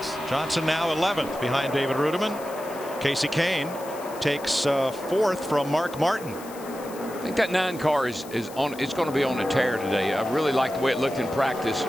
Johnson now 11th behind David Rudiman. Casey Kane takes 4th from Mark Martin. I think that 9 car is on. It's going to be on a tear today. I really like the way it looked in practice.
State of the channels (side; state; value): left; noise; hiss, 18 dB below the sound